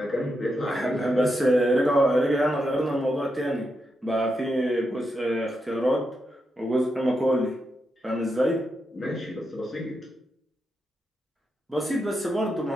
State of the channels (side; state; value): both; normal; correlation 0.85